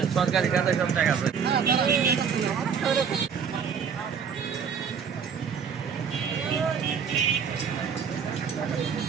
সরকারি খাতে সব টাকা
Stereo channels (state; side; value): quieter; left; 6.8 dB